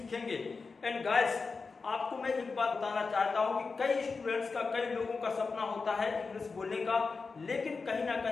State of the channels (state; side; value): quieter; right; 4.5 dB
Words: एंड गाइस आपको मैं एक बात बताना चाहता हूं कि कई स्टूडेंट्स का, कई लोगों का सपना होता है इंग्लिश बोलने का, लेकिन कहीं ना